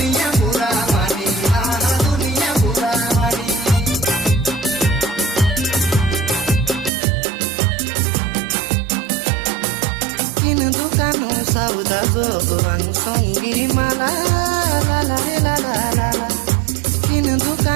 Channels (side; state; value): left; drops out; at 6.9 s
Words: बुरा मानी दुनिया बुरा मानी किन दुकानो सौदा जोगवान संगी माला ला ला रे ला ला ला ला किन